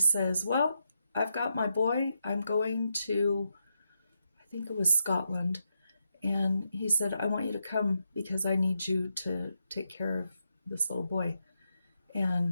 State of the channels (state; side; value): inverted; both; correlation -0.83